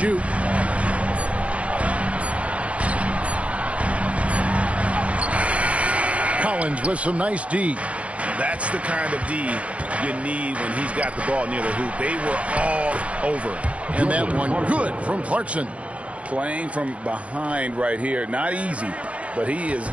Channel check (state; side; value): late; left; 0.063 ms